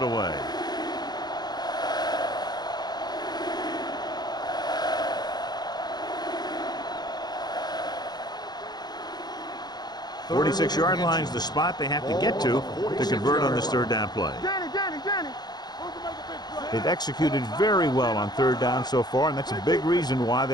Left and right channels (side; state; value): right; late; 0.20 ms